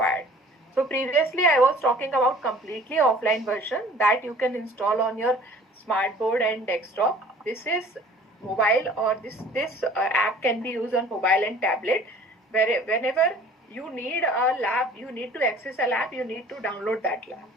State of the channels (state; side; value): normal; both; correlation 0.49